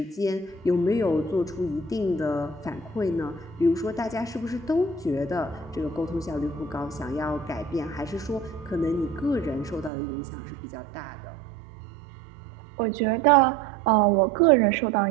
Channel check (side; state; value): left; drops out; at 9.9 s